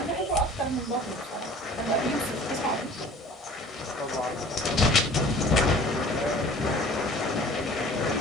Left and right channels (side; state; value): both; normal; correlation 0.47